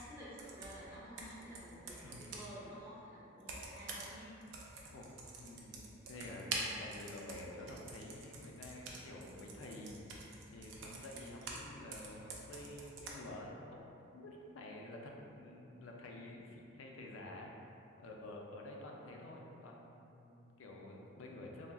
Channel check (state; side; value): normal; both; correlation 0.20